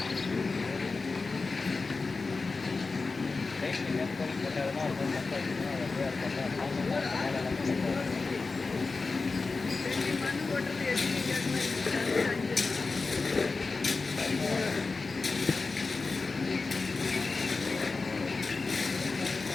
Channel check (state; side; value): quieter; right; 4.0 dB